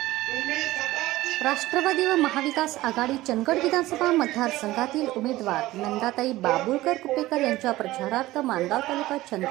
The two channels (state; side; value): quieter; left; 17.2 dB